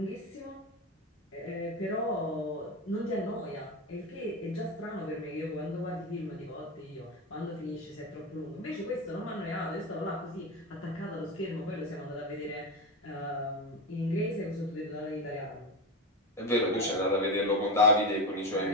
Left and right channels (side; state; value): both; normal; correlation 0.18